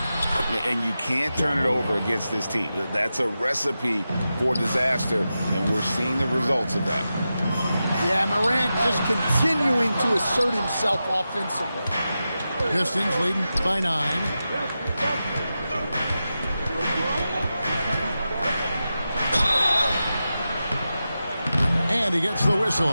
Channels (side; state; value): both; inverted; correlation -0.91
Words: And you can't turn it over against this team. That's a recipe for disaster, and we're seeing the results of that. Yeah, Morant just continuing to assert himself offensively. Pistons leading by 9. And he gets the